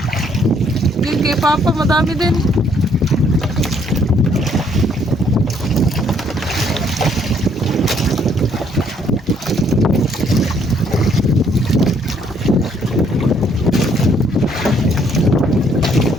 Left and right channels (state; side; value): normal; both; correlation 0.66